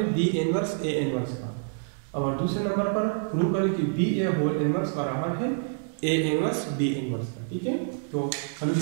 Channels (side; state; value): left; silent; digital silence